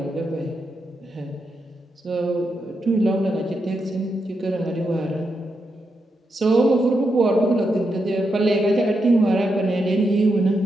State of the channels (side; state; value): both; normal; correlation 0.84